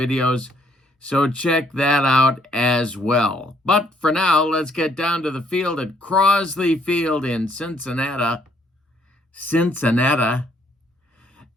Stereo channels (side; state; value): both; normal; correlation 0.68